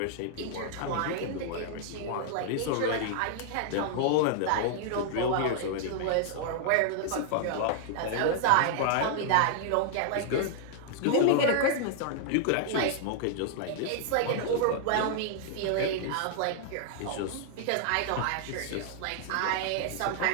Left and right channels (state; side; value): different; both; correlation -0.01